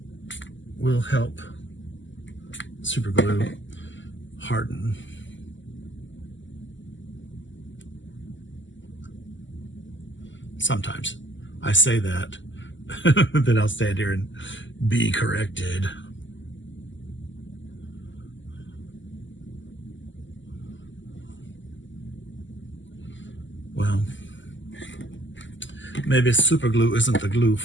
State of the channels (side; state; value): right; late; 0.54 ms